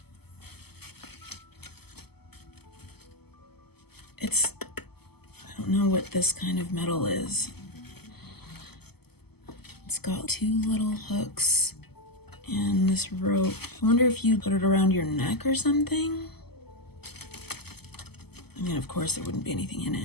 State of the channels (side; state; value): right; late; 0.96 ms